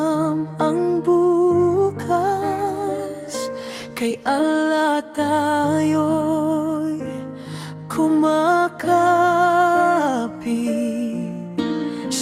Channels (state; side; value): identical; both; correlation 1.00